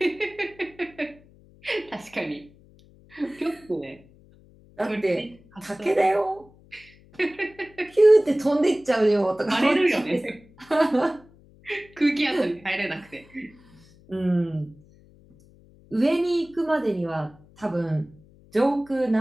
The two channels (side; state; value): left; noise; hum, 27 dB below the sound